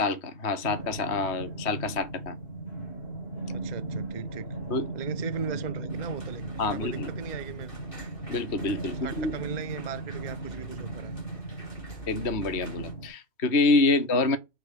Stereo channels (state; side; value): late; right; 3.1 ms